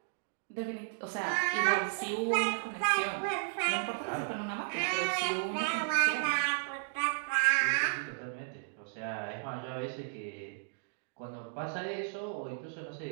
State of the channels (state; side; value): silent; left; digital silence